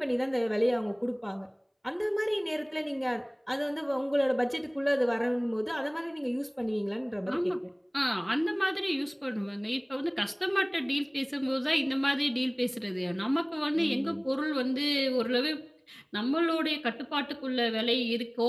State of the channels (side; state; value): both; identical; correlation 1.00